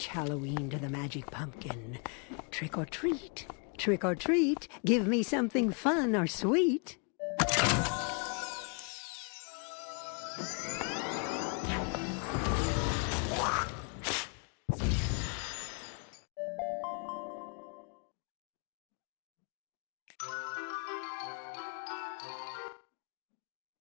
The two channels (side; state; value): right; quieter; 37.8 dB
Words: Halloween to the magic pumpkin. Trick or treat, trick or treat, give me something fun or sweet.